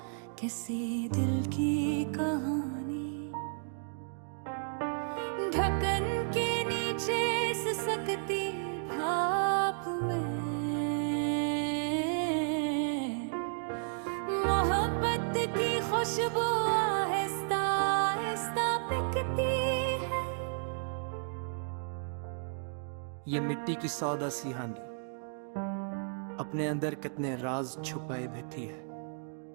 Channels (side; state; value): left; silent; digital silence